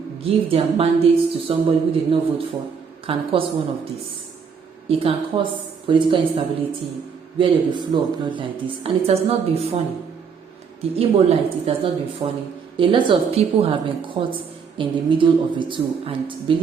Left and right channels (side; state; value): left; quieter; 6.2 dB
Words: give their mandates to somebody who did not vote for can cause one of these. It can cause political instability where there will be flow of blood like this. And it has not been funny. The Imo light, it has not been funny. A lot of people have been caught in the middle of the two. And